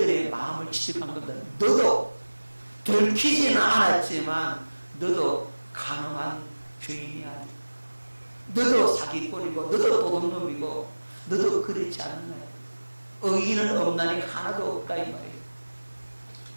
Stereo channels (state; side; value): inverted; both; correlation -1.00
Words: 마음을 지적한 겁니다. 너도 들키지는 않았지만 너도 가늠한 죄인이야. 너도 사기꾼이고 너도 도둑놈이고 너도 그렇지 않나. 의인은 없나니 하나도 없다 이 말이에요.